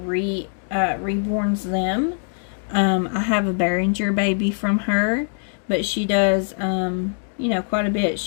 them. I have a Behringer baby from her, but she does you know, quite a bit.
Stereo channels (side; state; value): right; silent; 64 dB below the other